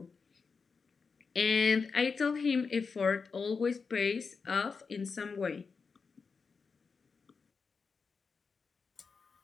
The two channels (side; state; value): right; quieter; 5.1 dB